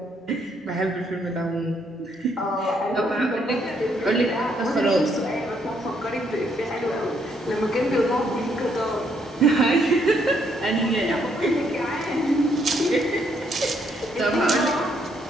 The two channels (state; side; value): normal; both; correlation 0.72